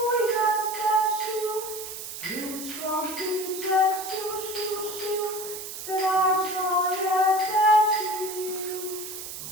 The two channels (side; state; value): right; noise; hiss, 9 dB below the sound